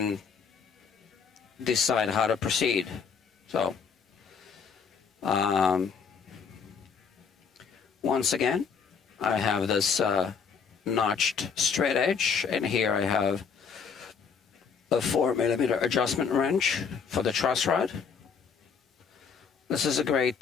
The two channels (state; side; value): quieter; right; 6.3 dB